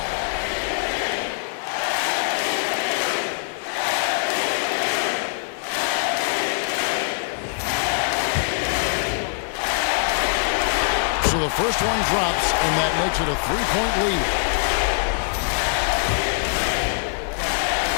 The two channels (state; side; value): silent; right; 63 dB below the other